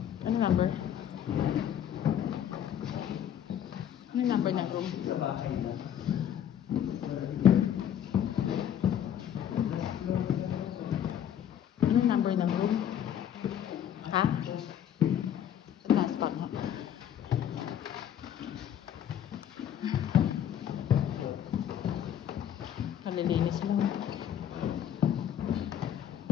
Ano number? Ano number ng room? Ano number ng room? Ha? Sa taas pa nga. Kalilinis mo.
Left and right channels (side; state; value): right; quieter; 9.8 dB